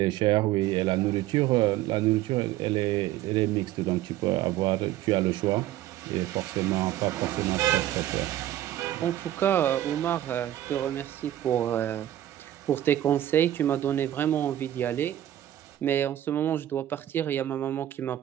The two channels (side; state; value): left; quieter; 13.0 dB